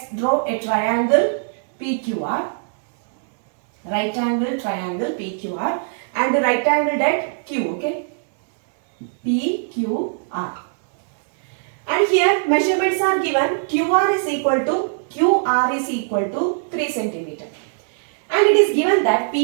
draw a triangle PQR. Right angle triangle PQR and the right angled at Q, okay? PQR. And here measurements are given. QR is equal to 3 cm. And it is given that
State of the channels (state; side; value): silent; left; digital silence